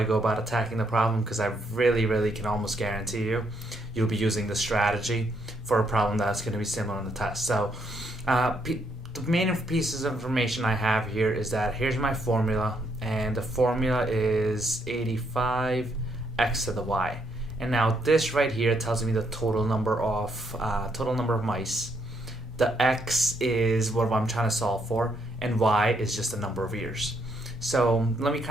go about attacking the problem, because I really can almost guarantee you'll be using the strategy for a problem that's going to be similar on the test. So the main pieces of information I have here is that here's my formula, and the formula is 85 x to the y. And now this right here tells me the total number of mice. The x is what I'm trying to solve for, and y is just the number of years. So let me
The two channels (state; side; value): normal; both; correlation 0.74